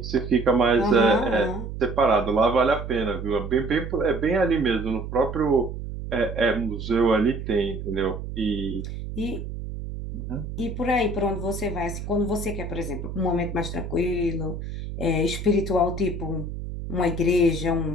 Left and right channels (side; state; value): right; noise; hum, 7 dB below the sound